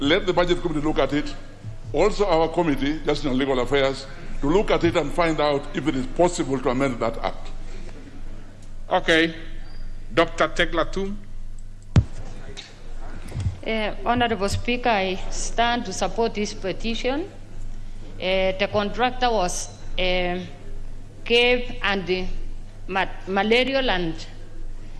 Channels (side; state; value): both; identical; correlation 1.00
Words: the Budget Committee look at it, also our committee, Justice and Legal Affairs, to look at it and find out if it is possible to amend that act. Okay. Dr. Teglatum. Honorable Speaker, I stand to support this petition. The contractor was cave and malarial and